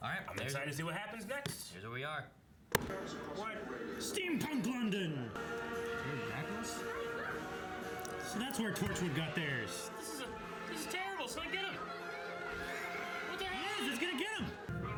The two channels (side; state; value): both; identical; correlation 1.00